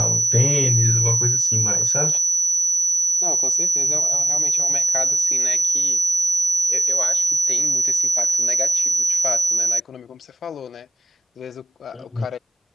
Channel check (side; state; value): both; normal; correlation 0.98